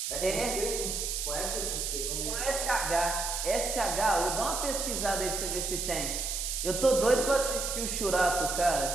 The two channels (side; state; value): right; noise; hiss, 2 dB below the sound